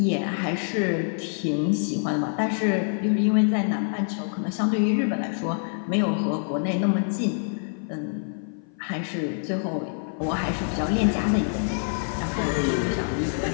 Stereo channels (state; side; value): silent; right; 56 dB below the other